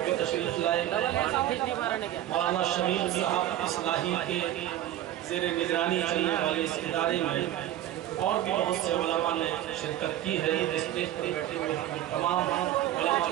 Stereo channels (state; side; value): quieter; left; 12.8 dB